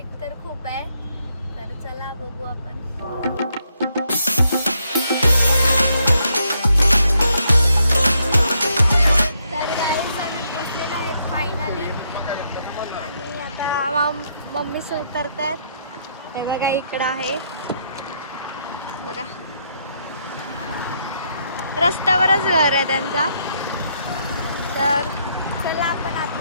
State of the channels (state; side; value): inverted; both; correlation -0.75